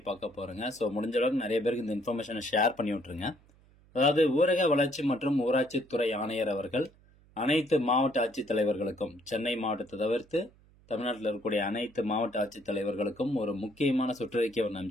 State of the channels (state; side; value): noise; right; hum, 28 dB below the sound